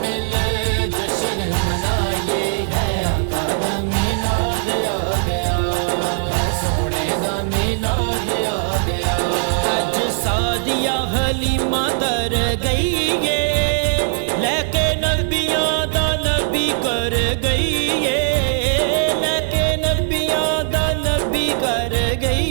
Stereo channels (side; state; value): left; silent; 58 dB below the other